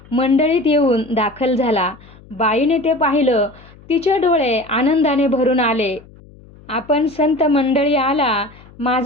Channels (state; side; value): noise; left; hum, 23 dB below the sound